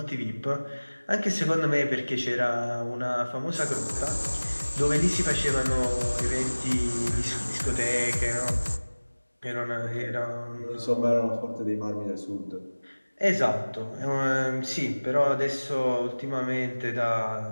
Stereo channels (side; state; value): both; inverted; correlation -1.00